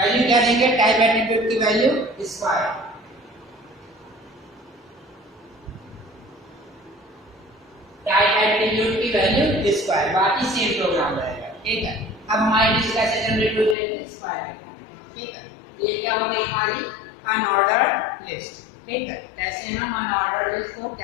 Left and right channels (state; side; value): drops out; right; at 13.8 s